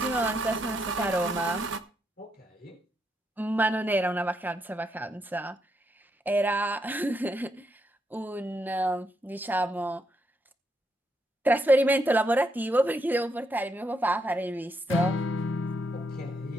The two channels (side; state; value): both; normal; correlation 0.79